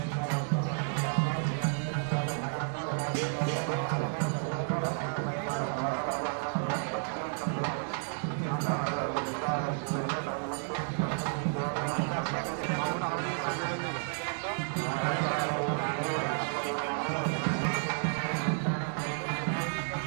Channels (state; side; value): silent; left; 57 dB below the other